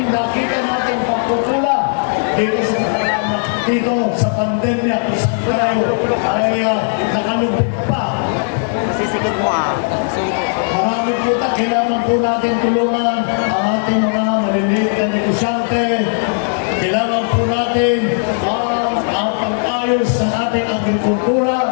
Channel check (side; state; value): right; silent; 55 dB below the other